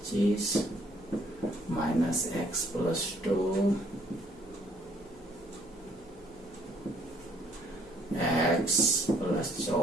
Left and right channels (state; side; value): noise; right; hum, 27 dB below the sound